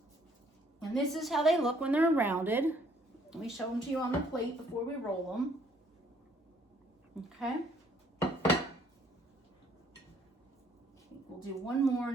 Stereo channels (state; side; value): normal; both; correlation 0.63